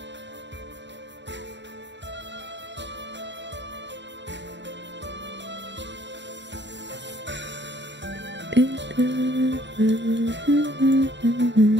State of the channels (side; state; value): left; late; 0.52 ms